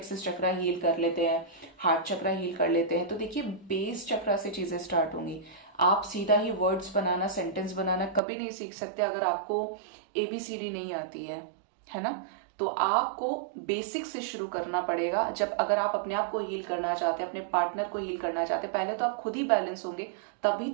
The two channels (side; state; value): left; drops out; at 8.2 s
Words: चक्रा हील कर लेते हैं, हार्ट चक्रा हील कर लेते हैं, तो देखिए बेस चक्रा से चीजें स्टार्ट होंगी। आप सीधा ही वर्ड्स बनाना, सेंटेंस बनाना कभी नहीं सीख सकते अगर आपको ABCD नहीं आती है ना। तो आपको बेसिक से शुरू करना पड़ेगा। जब अगर आप अपने आप को हील करना चाहते हैं, अपने पार्टनर को हील करना चाहते हैं, पहले तो आप खुद ही बैलेंस होंगे, तभी